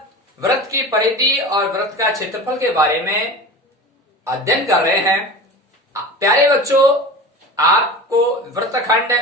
वृत्त की परिधि और वृत्त का क्षेत्रफल के बारे में अध्ययन कर रहे हैं। प्यारे बच्चों, आपको वृत्तखंड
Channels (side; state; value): both; normal; correlation 0.33